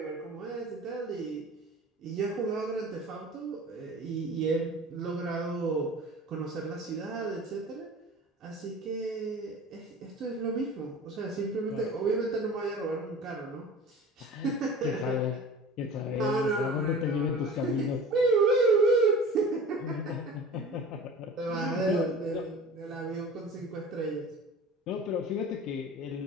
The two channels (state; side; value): normal; both; correlation 0.39